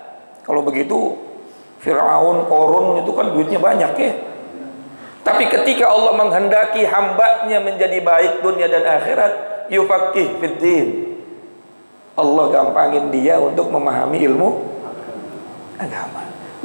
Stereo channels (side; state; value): both; inverted; correlation -1.00